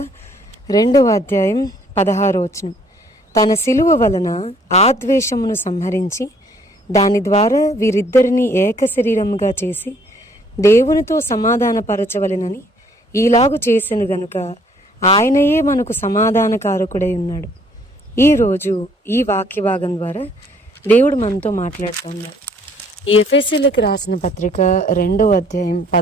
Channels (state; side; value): normal; both; correlation 0.62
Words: 2వ అధ్యాయం 16వ వచనం. తన సిలువ వలన ఆ ద్వేషమును సంహరించి దాని ద్వారా వీరిద్దరిని ఏక శరీరముగా చేసి దేవునితో సమాధానపరచవలెనని ఈలాగు చేసెను గనుక ఆయనయే మనకు సమాధానకారకుడై ఉన్నాడు. ఈరోజు ఈ వాక్య భాగం ద్వారా దేవుడు మనతో మాట్లాడుతున్నాడు. ఈ ఎఫెసీయులకు రాసిన పత్రిక 2వ అధ్యాయం